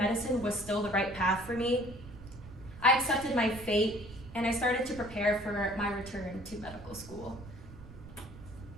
was still the right path for me, I accepted my fate and I started to prepare for my return to medical school.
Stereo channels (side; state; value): right; noise; rumble, 16 dB below the sound